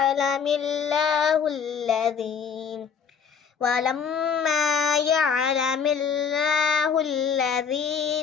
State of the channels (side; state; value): right; quieter; 6.5 dB